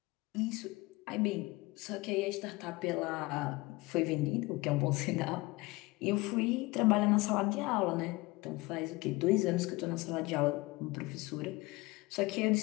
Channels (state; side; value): quieter; right; 22.5 dB